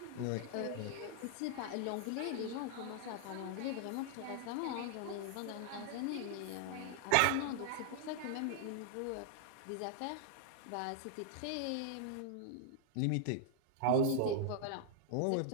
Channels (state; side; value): different; both; correlation -0.01